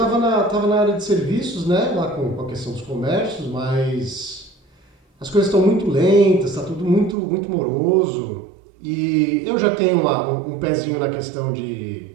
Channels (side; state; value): left; drops out; at 7.2 s